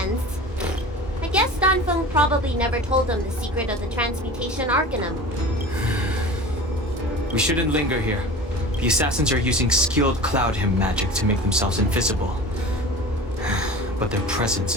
I guess Dan Feng probably never told them the secret of the Transmutation Arcanum. We shouldn't linger here. The assassins are using skilled cloud hymn magic to make themselves invisible. But their presence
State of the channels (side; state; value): both; normal; correlation 0.36